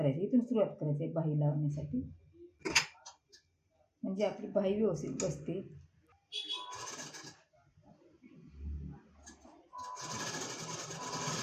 इथून सुरुवात करायची आहे बाही लावण्यासाठी. म्हणजे आपली बाही व्यवस्थित बसते.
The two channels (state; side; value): identical; both; correlation 1.00